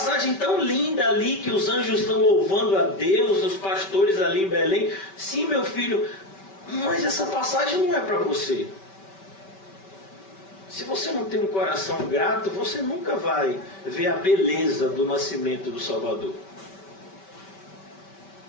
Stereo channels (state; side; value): late; right; 5.2 ms